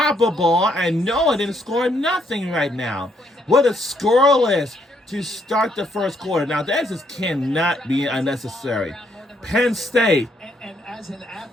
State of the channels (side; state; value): both; normal; correlation 0.72